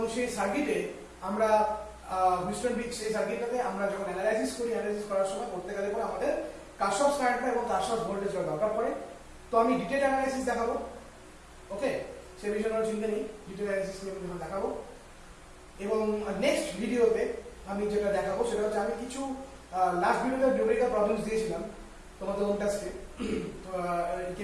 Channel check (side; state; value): both; identical; correlation 1.00